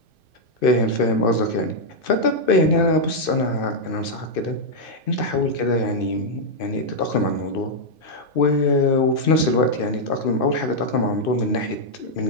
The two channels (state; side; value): late; right; 2.5 ms